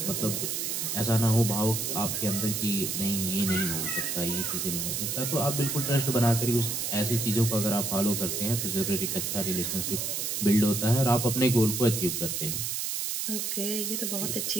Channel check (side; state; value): right; noise; hiss, 1 dB below the sound